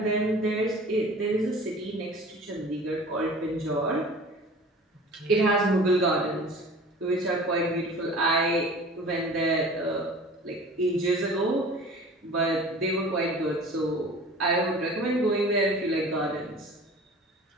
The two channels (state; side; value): normal; both; correlation 0.43